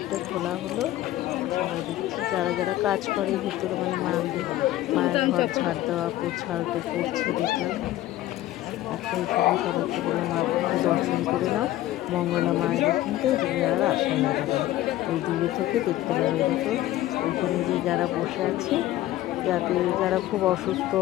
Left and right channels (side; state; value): right; quieter; 15.0 dB